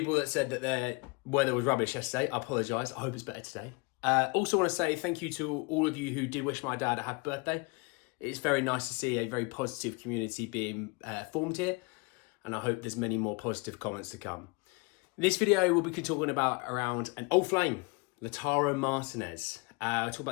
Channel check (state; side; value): quieter; right; 28.3 dB